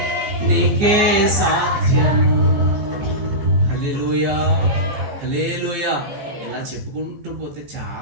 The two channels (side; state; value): left; late; 14 ms